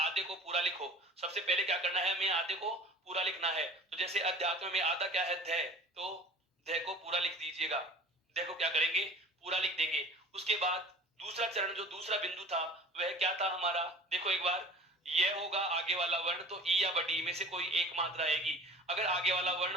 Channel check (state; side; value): normal; both; correlation 0.43